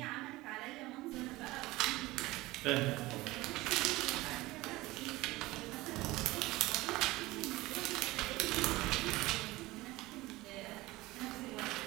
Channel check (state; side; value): quieter; left; 19.4 dB